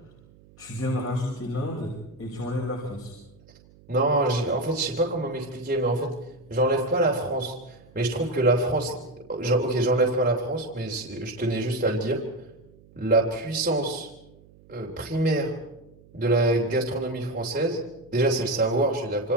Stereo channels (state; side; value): noise; right; hum, 26 dB below the sound